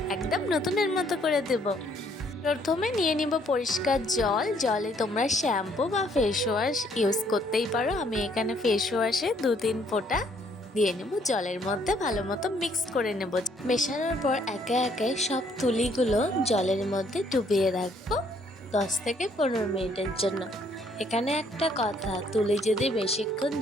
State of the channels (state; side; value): normal; both; correlation 0.66